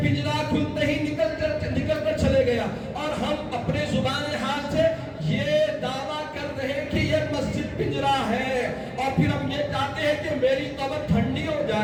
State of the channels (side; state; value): both; identical; correlation 1.00